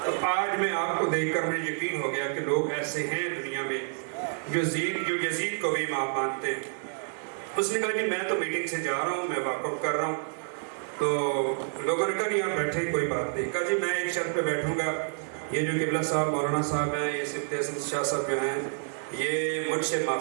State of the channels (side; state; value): left; silent; digital silence